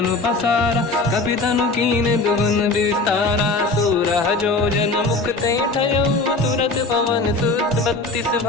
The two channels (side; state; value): right; quieter; 3.3 dB